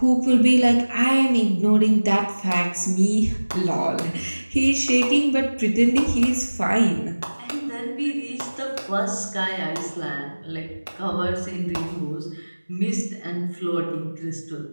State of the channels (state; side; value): inverted; both; correlation -1.00